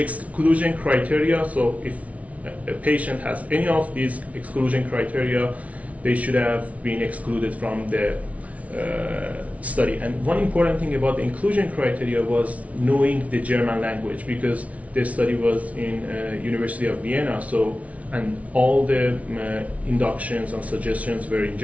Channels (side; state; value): left; late; 0.067 ms